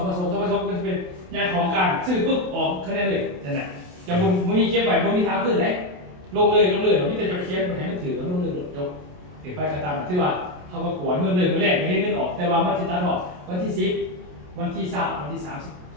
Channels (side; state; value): left; late; 28 ms